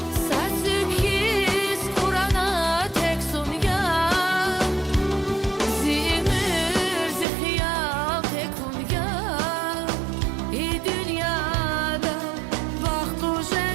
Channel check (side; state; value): left; drops out; at 7.2 s